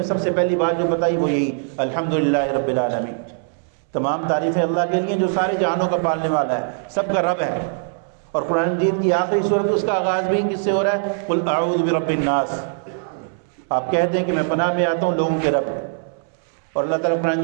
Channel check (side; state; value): left; silent; 65 dB below the other